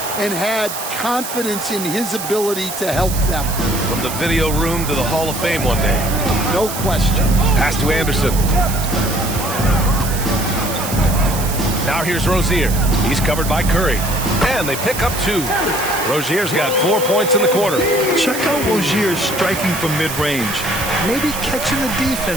and had confidence in his ability to help them. From the video room to the Hall of Fame one day. No question. Pass to Anderson. Now here's Rozier. He's covered by Curry. And they pick up 2. Rozier's got 4 points in the quarter. Check out Rozier striking from mid-range. Maybe catching the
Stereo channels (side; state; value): right; noise; hiss, 7 dB below the sound